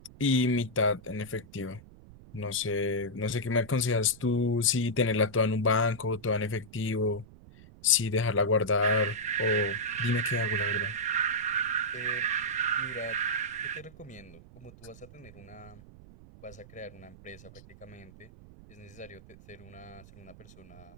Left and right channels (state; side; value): noise; right; rumble, 20 dB below the sound